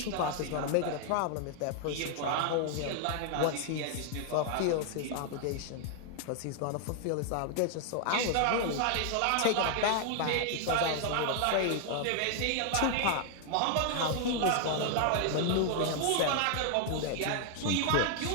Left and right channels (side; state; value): both; different; correlation 0.00